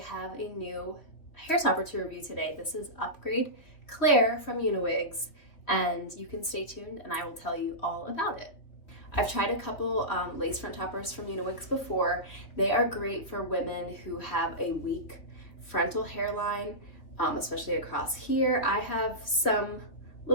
have a new hair topper to review today. This is Upgrade Claire from Uniwigs, and you can stay tuned and I will tell you all about it. I've tried a couple lace front toppers from Uniwigs before. They are great for women who have a weak frontal hairline, especially across here. I have some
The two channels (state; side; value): late; right; 3.3 ms